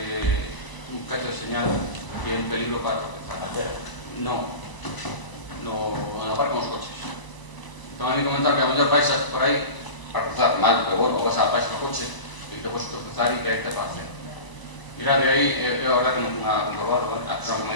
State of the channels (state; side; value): late; right; 1.0 ms